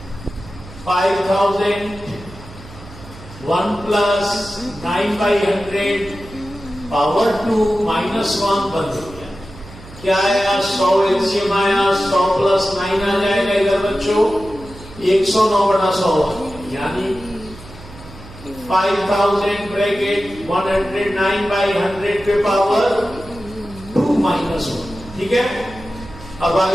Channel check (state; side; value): noise; right; hum, 18 dB below the sound